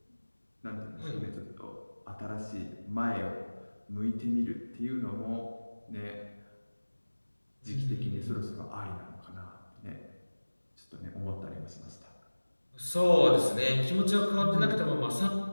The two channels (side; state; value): both; inverted; correlation -1.00